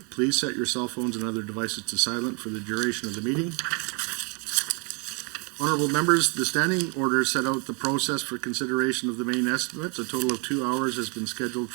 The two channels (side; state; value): left; quieter; 34.8 dB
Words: Please set your cell phones and other devices to silent for the duration of the meeting. Honourable members, the standing order set out the process for consideration of the main estimates. A total of 2 hours has been scheduled